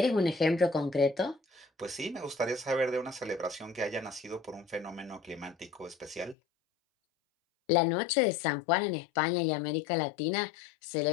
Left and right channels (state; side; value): drops out; right; at 6.4 s